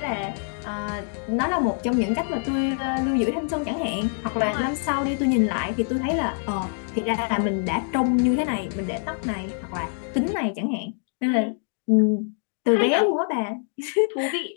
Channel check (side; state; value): right; silent; 62 dB below the other